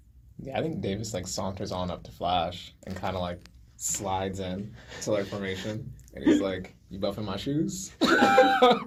Yeah, I think Davis like saunters on up to Flash and kind of like slides in to like formation, and he's like, "You buffing my shoes?"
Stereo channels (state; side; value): identical; both; correlation 1.00